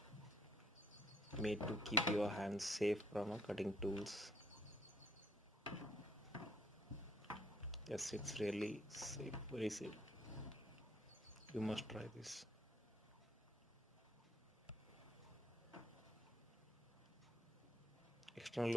made to keep your hands safe from cutting tools. Yes, it's really safe, very safe. You must try this. External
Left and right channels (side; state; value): both; normal; correlation 0.65